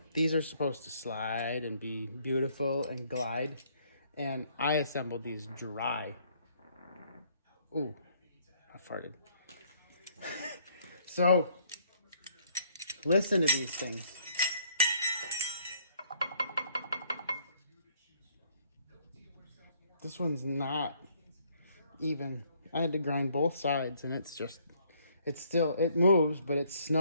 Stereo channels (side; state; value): both; inverted; correlation -0.65